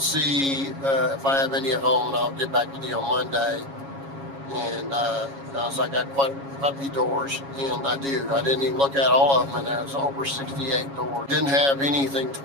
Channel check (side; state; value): left; late; 7.3 ms